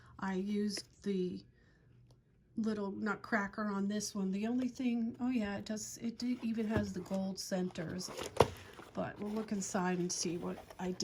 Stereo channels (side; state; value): both; identical; correlation 1.00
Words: I used the little nutcracker on this one. The only thing, oh yeah, it even has the gold centers. But we'll look inside and see what I